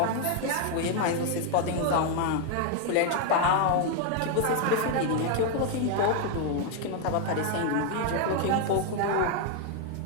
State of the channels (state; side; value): different; both; correlation 0.00